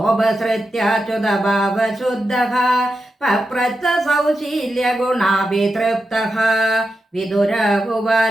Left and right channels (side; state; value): both; normal; correlation 0.88